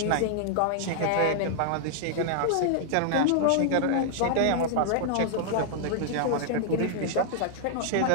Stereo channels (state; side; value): different; both; correlation -0.01